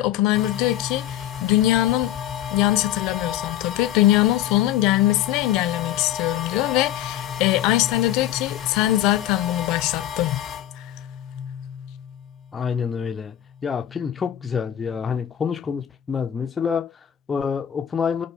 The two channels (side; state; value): right; quieter; 12.0 dB